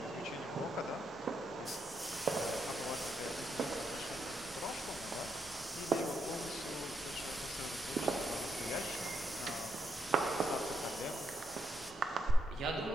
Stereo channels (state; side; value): normal; both; correlation 0.79